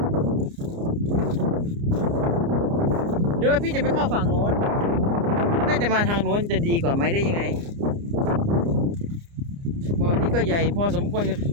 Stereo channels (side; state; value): left; late; 29 ms